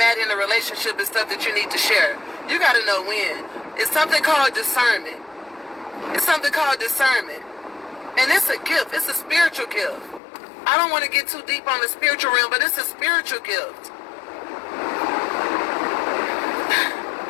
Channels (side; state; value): right; drops out; at 10.2 s